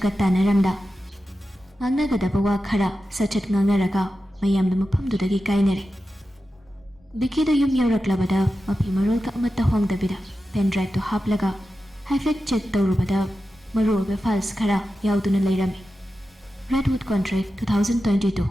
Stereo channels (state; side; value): normal; both; correlation 0.92